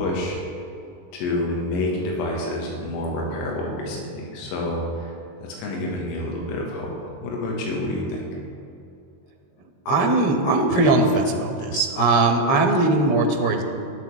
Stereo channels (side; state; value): right; late; 22 ms